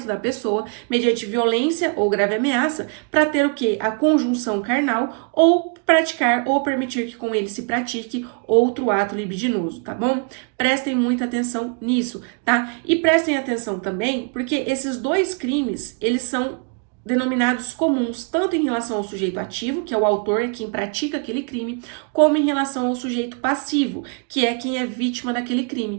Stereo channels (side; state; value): left; quieter; 38.1 dB